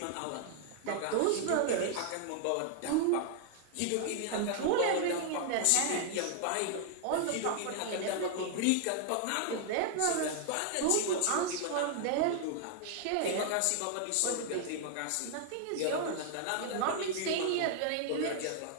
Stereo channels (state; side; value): different; both; correlation 0.00